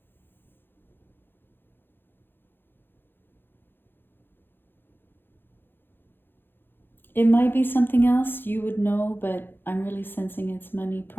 It might be something else you would know, but I'm really sensing it's money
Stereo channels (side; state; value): right; late; 0.10 ms